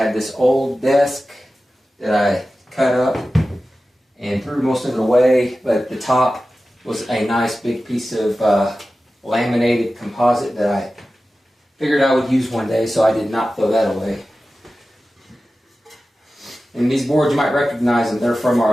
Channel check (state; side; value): normal; both; correlation 0.94